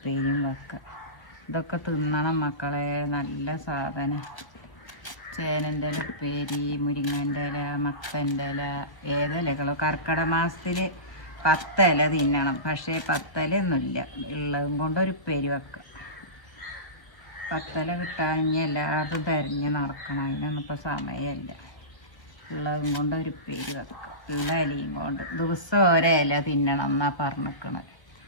വെക്കാം. ഇതൊക്കെ തിന്നണം മക്കളെ, നല്ല സാധനം. ചേനൻ്റെ ഉപ്പേരി, മുരിങ്ങൻ്റെ ഇല, മത്തൻ്റെ ഇല, ഏതിലകളോ. കർക്കിടക മാസത്തിൽ 10 ഇല തിന്നണം, പക്ഷേ 10 ഇലയൊന്നുമില്ല. ഉള്ളതും കൊണ്ട് ഒരു ഉപ്പേരി വെക്കാം. 10 ഇല കിട്ടാമെങ്കിൽ എല്ലായിടത്തും തിരഞ്ഞ് നടക്കണം, അതിനൊന്നും ഇപ്പോൾ സമയമില്ല. ഉള്ളതും കൊണ്ട് ഒരു ഉപ്പേരി വെക്കാം. ഉള്ള ഇലയും കൊണ്ട് ദിവസം ഓരോ ഇല തിന്നണം എന്നാണ് പറഞ്ഞിരിക്കണത്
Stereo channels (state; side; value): late; right; 1.0 ms